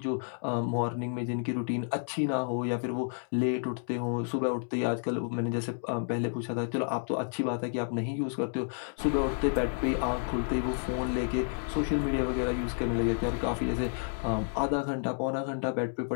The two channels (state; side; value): silent; right; 57 dB below the other